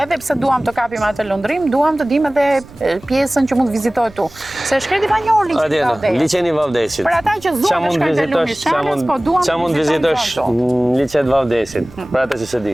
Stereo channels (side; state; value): right; noise; rumble, 22 dB below the sound